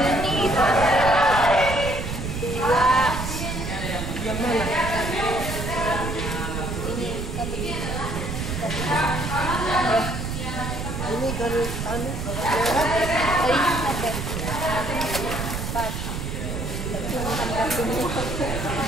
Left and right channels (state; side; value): noise; right; rumble, 4 dB below the sound